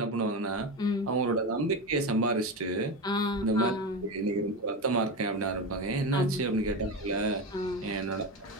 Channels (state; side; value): normal; both; correlation 0.19